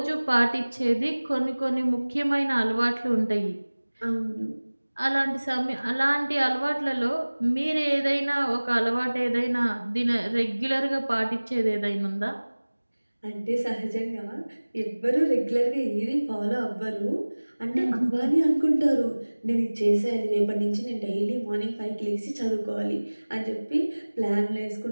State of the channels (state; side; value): inverted; both; correlation -1.00